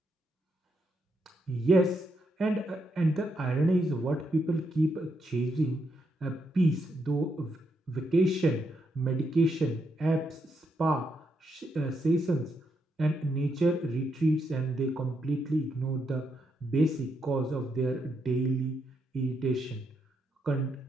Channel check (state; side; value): normal; both; correlation 0.79